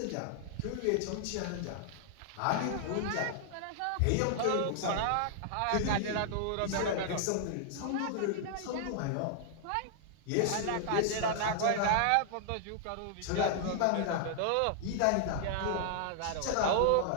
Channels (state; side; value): different; both; correlation 0.00